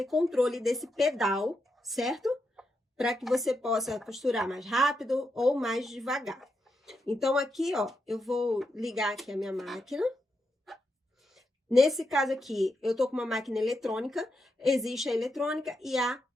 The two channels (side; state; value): both; normal; correlation 0.84